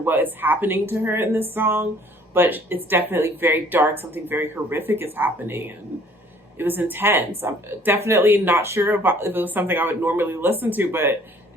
is happening to her in this song, but it's definitely very dark. Something very horrific is happening, and it was intense. I'm definitely not sure if it was something I would normally listen to, but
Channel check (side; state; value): both; normal; correlation 0.56